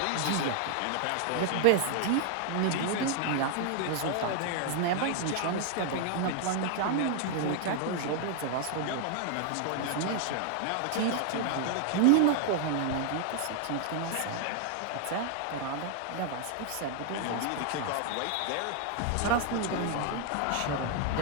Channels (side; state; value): both; different; correlation 0.00